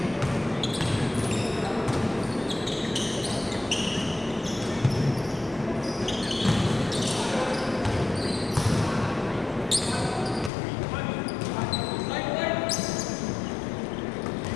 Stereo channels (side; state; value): right; drops out; at 10.5 s